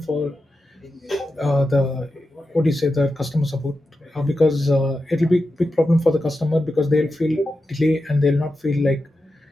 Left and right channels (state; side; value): normal; both; correlation 0.90